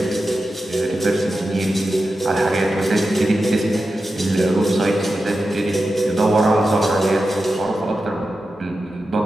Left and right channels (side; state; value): both; normal; correlation 0.91